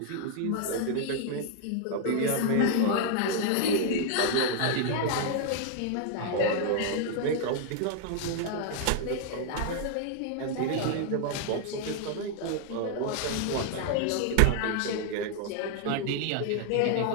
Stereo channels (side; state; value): both; different; correlation 0.00